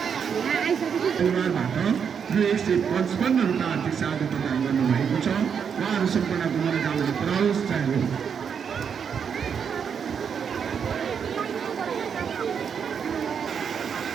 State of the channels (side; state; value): left; quieter; 7.1 dB